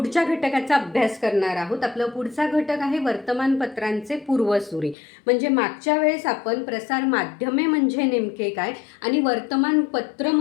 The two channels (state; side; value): drops out; right; at 5.0 s